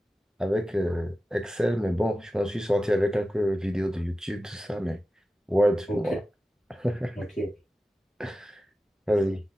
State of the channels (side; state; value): both; normal; correlation 0.93